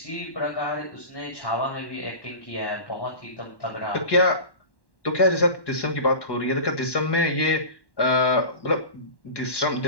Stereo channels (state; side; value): late; right; 1.1 ms